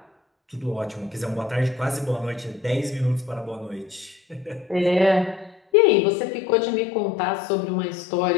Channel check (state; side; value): drops out; right; at 5.6 s